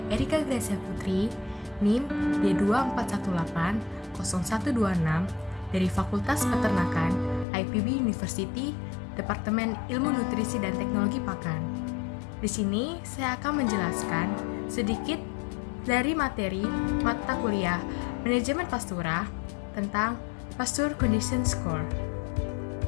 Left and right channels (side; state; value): right; drops out; at 7.5 s